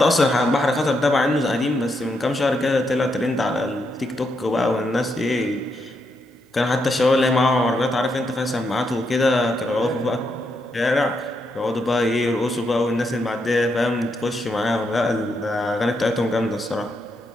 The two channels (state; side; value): normal; both; correlation 0.80